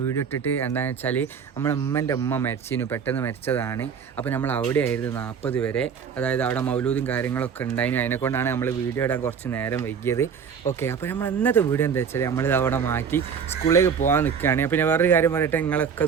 വീഡിയോ ഇട്ടിട്ട്. എന്താണെന്ന് വെച്ചാൽ നമ്മളെ ഉമ്മൻ്റെ ഉമ്മ മരിച്ചിന്, പെട്ടെന്ന് മരിച്ചതാണ്. അപ്പോൾ നമ്മൾ അവിടെ ആയിരുന്നു 40 വരെ, അതായത് അവിടെ മൗലൂദും കാര്യങ്ങളൊക്കെ ഉണ്ടായിരുന്നു. അതിനെക്കൊണ്ടാണ് നമ്മൾ വീഡിയോ ഇടാൻ കുറച്ച് നേരം വൈകിയത്. ഓക്കെ, അപ്പോൾ നമ്മൾ ഇന്നത്തെ വീഡിയോ എന്താ വെച്ചാൽ നമ്മളിത് അവിടെ മാറ്റി സ്കൂളിലേക്ക് പോകാൻ നിൽക്കുകയാണ്. പിന്നെ വേറൊരു കാര്യം പറയട്ടെ, നിങ്ങളൊക്കെ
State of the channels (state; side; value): quieter; left; 6.9 dB